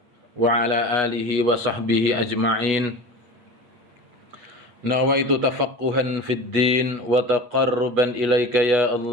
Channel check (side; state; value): left; late; 8.3 ms